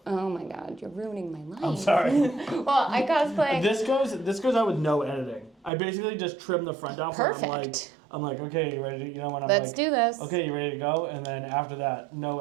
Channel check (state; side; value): drops out; left; at 5.7 s